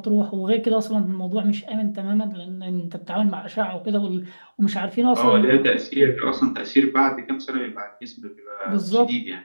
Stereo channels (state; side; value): inverted; both; correlation -1.00